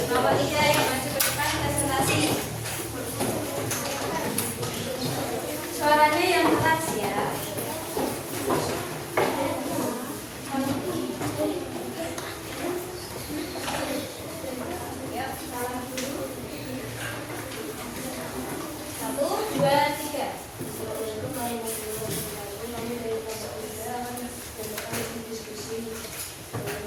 Suaranya yang keras ya. Yuk, salam dulu. 1, 2, 3.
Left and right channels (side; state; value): both; identical; correlation 1.00